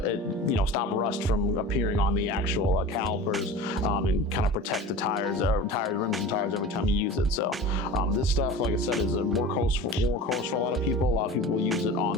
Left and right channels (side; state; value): both; normal; correlation 0.35